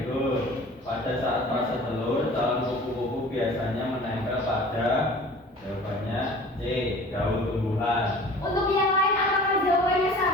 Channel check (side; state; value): both; normal; correlation 0.44